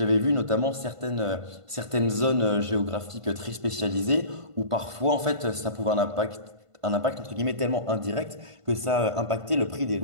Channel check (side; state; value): left; late; 1.5 ms